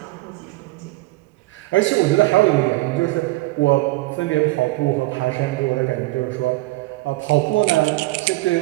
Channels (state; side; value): quieter; left; 20.3 dB